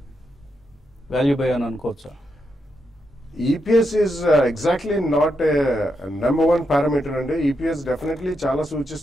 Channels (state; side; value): normal; both; correlation 0.83